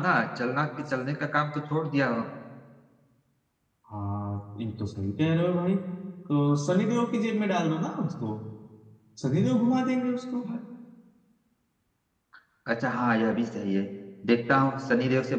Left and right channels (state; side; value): identical; both; correlation 1.00